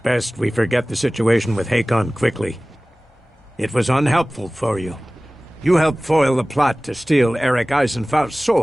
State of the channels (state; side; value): normal; both; correlation 0.98